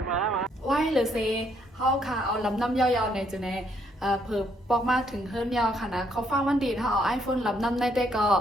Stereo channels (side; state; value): both; normal; correlation 0.71